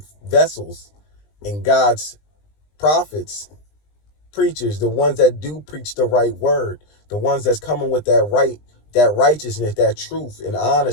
vessels and God's prophets, preachers, the ones that do preach the right word, the ones that's coming with that righteousness, that truth and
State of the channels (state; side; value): late; right; 20 ms